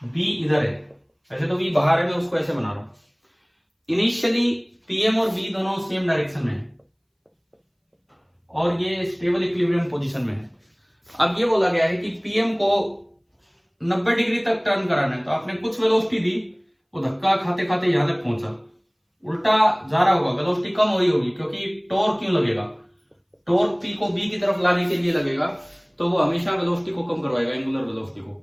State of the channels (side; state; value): both; identical; correlation 1.00